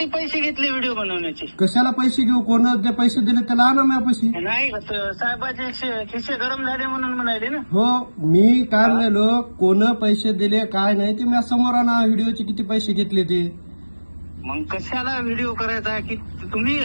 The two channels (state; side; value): inverted; both; correlation -1.00